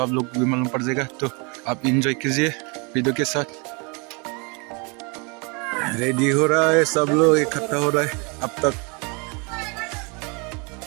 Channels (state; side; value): quieter; left; 31.6 dB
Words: लोग भी मालूम पड़ जाएगा। तो आप इंजॉय कीजिए वीडियो के साथ। रेडी हो रहा है, सब लोग इकट्ठा हो रहा है अब तक।